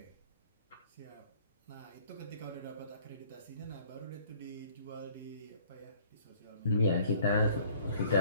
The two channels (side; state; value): both; inverted; correlation -0.56